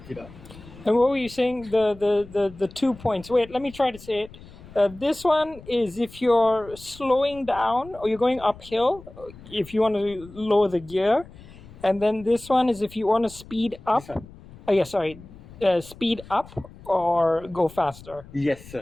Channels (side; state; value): left; noise; rumble, 19 dB below the sound